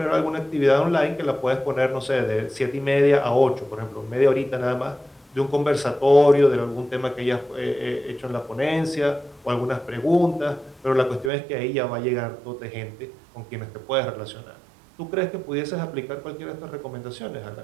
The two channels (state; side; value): drops out; left; at 11.3 s